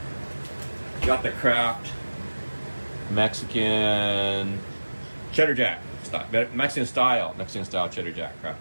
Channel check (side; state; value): both; inverted; correlation -1.00